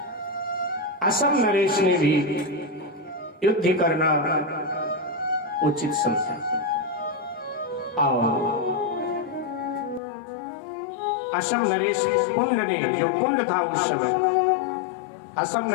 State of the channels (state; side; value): drops out; right; at 10.0 s